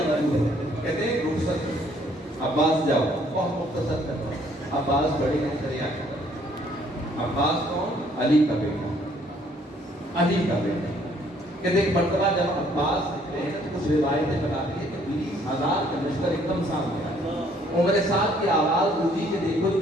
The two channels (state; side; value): normal; both; correlation 0.63